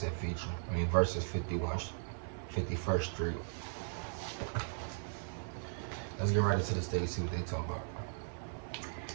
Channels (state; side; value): silent; left; 53 dB below the other